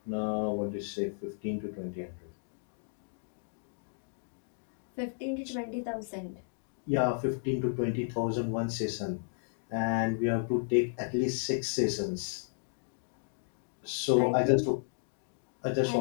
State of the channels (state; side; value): silent; right; digital silence